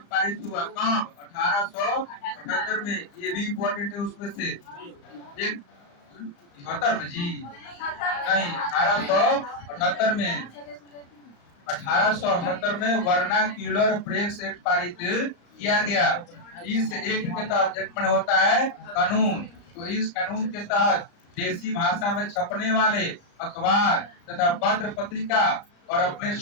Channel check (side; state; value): right; late; 35 ms